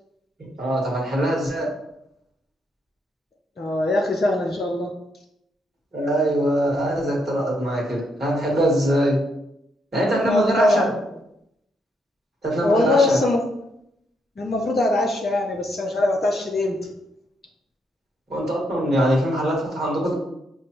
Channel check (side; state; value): both; normal; correlation 0.77